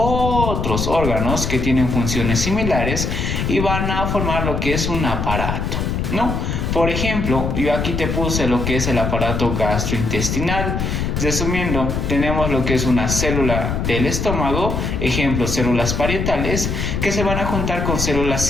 órganos que tienen funciones similares y van a formar lo que es un aparato, ¿no? Por ejemplo, yo aquí te puse lo que es el aparato gastrointestinal. Resumiendo, tenemos lo que es una célula del estómago, ejemplo, células parietales, que se van a juntar con células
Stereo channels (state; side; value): noise; left; rumble, 1 dB below the sound